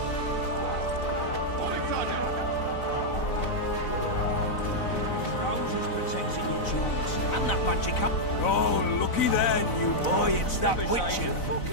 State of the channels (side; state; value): right; late; 4.0 ms